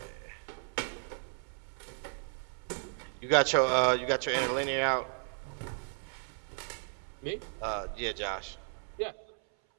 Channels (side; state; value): left; silent; 55 dB below the other